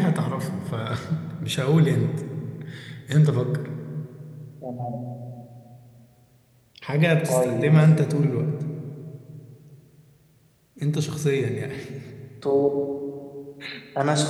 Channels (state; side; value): identical; both; correlation 1.00